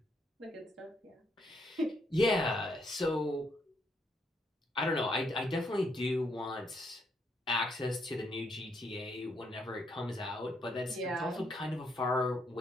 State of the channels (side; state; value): both; normal; correlation 0.74